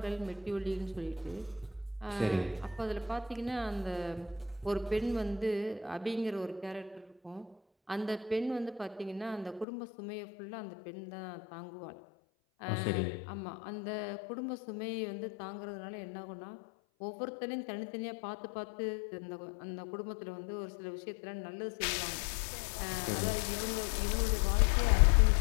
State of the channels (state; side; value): drops out; right; at 9.7 s